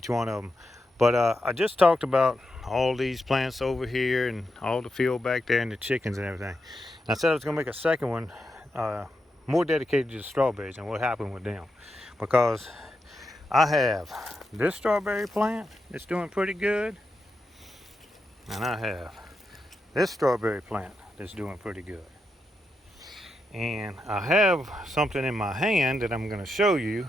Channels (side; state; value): both; normal; correlation 0.86